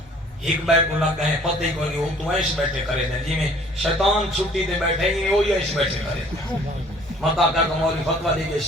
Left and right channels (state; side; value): normal; both; correlation 0.54